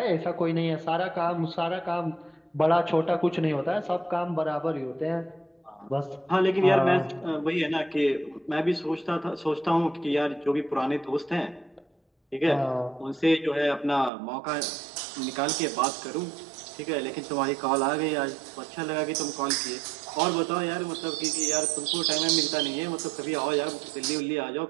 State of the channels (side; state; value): left; drops out; at 14.1 s